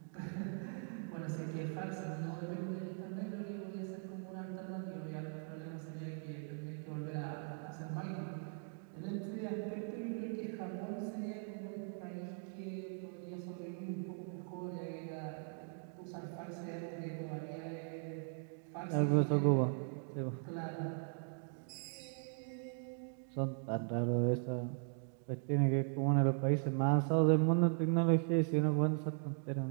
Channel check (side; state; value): left; silent; 51 dB below the other